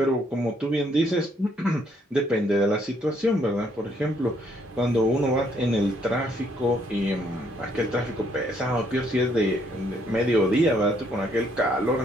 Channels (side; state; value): both; normal; correlation 0.69